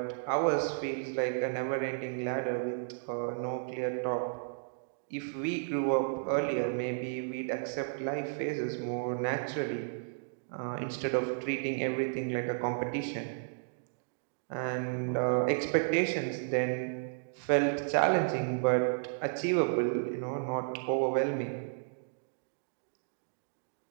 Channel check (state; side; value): silent; left; digital silence